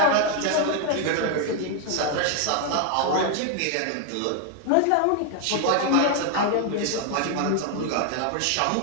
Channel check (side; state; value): both; different; correlation 0.01